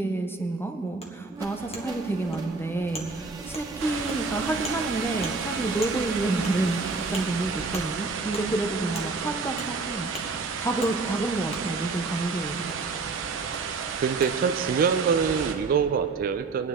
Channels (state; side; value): quieter; left; 4.0 dB